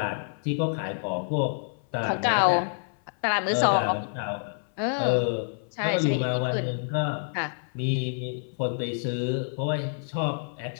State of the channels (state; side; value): silent; right; 56 dB below the other